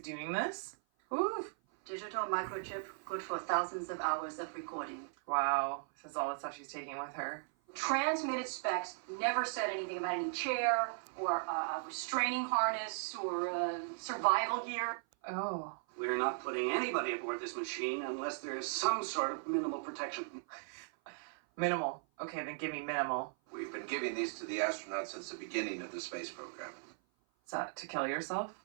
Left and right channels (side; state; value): left; silent; 53 dB below the other